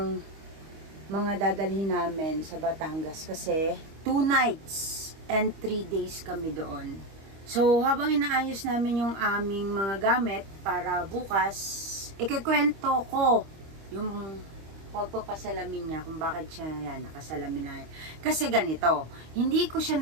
mga dadalhin namin sa Batangas. Kasi 2 nights and 3 days kami doon. So, habang inaayos namin yung aming mga gamit para bukas, ikikwento ko yung pagpapasalamin niya kung bakit siya nakasalamin na yan. Kasi ganito, hindi ko siya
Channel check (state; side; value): late; left; 25 ms